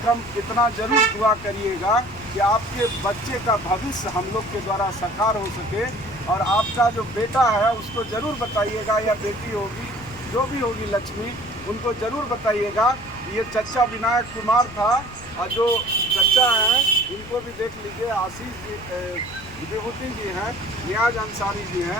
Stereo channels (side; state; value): left; noise; rumble, 18 dB below the sound